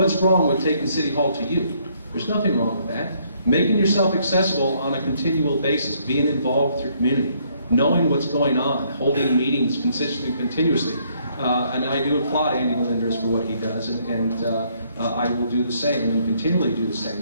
wrong with taking City Hall to you? There's nothing wrong with that. Making yourself accessible on a continual basis, being involved with your community, knowing what's going on, holding meetings consistently, continuously. And I do applaud Andy Melendres for what he does, and I will do the same and continually do the same,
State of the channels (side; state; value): both; inverted; correlation -0.68